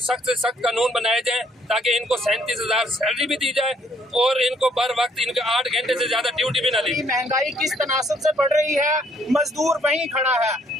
से सख्त कानून बनाए जाए ताकि इनको 37,000 सैलरी भी दी जाए और इनको बर वक्त इनके 8 घंटे से ज्यादा ड्यूटी भी ना दी। महंगाई किस तनासब से बढ़ रही है, मजदूर वहीं खड़ा है,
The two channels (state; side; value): normal; both; correlation 0.66